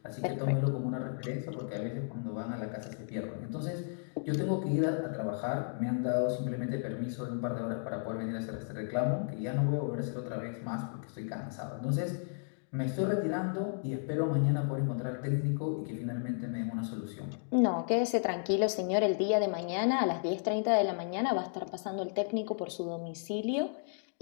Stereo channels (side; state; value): right; silent; digital silence